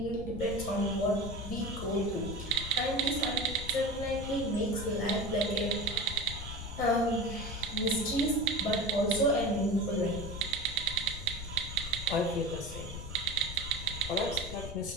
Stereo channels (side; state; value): left; noise; rumble, 9 dB below the sound